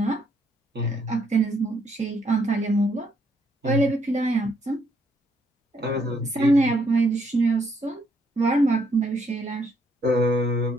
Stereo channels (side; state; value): both; normal; correlation 0.72